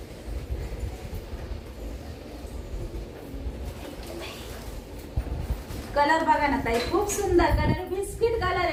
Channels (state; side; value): identical; both; correlation 1.00